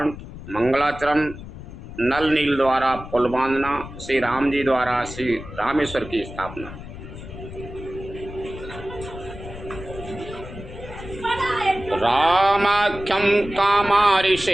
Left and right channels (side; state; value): left; noise; rumble, 13 dB below the sound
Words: मंगलाचरण। नल नील द्वारा पुल बांधना, श्री राम जी द्वारा श्री रामेश्वर की स्थापना। रामाख्यं